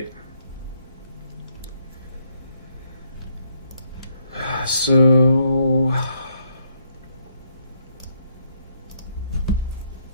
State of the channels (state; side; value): inverted; both; correlation -0.74